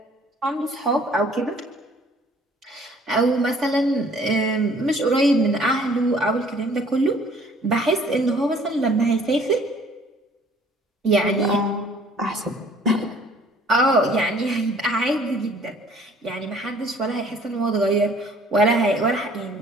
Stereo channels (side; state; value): both; normal; correlation 0.55